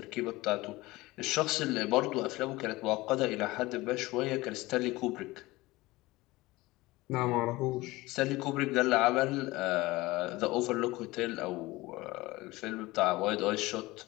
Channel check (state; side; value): quieter; right; 20.1 dB